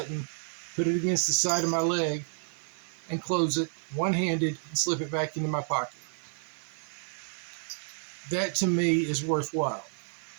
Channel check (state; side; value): silent; left; 56 dB below the other